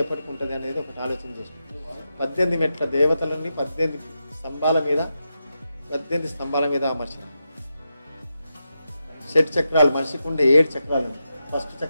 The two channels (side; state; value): both; inverted; correlation -0.87